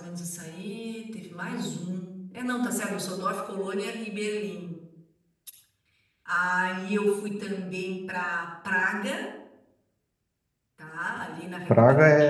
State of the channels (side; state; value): both; identical; correlation 1.00